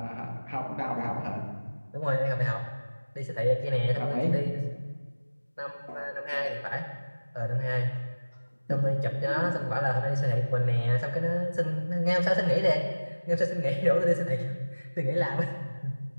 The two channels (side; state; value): both; inverted; correlation -1.00